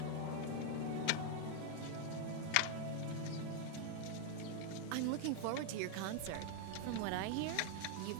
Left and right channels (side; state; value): both; different; correlation 0.00